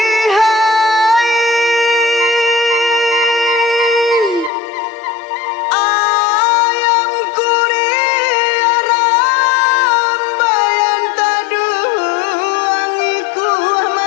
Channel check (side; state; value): right; drops out; at 4.5 s